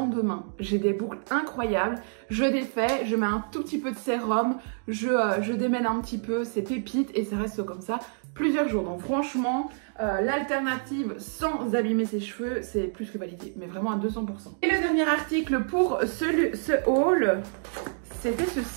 j'ai des boucles incroyables, je défais, je mets un tout petit peu de sérum, je démêle un petit peu, c'est pépite et ça reste comme ça plusieurs jours. Donc franchement l'alternative sans abîmer ses cheveux c'est plus que validé, mais vraiment à 200%. Et le dernier article pour ce haul, c'était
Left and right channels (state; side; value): silent; left; digital silence